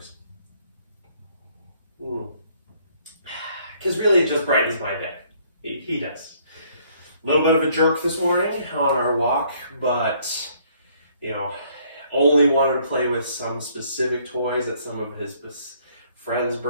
Because really it just brightens my day. He does. A little bit of a jerk this morning on our walk, but, you know, only wanted to play with some specific toys that some of his friends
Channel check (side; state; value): both; inverted; correlation -0.64